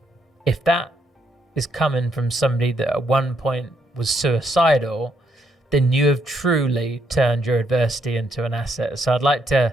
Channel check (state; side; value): normal; both; correlation 0.75